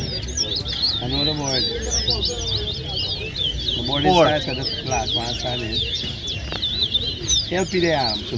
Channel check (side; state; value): both; identical; correlation 1.00